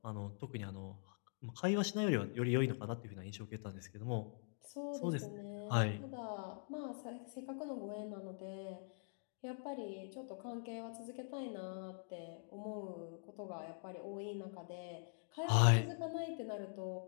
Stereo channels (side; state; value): right; silent; digital silence